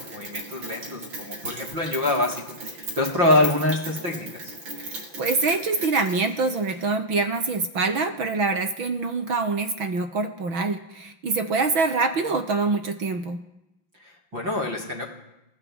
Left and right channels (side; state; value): left; late; 6.1 ms